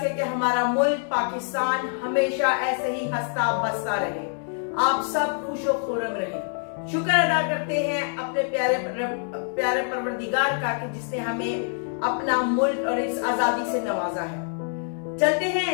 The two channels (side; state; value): right; silent; 61 dB below the other